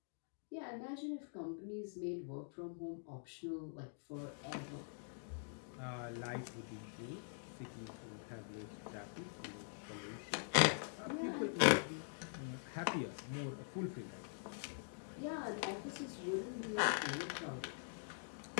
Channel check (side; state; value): right; silent; digital silence